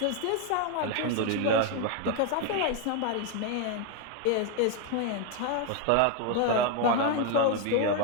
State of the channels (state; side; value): different; both; correlation 0.01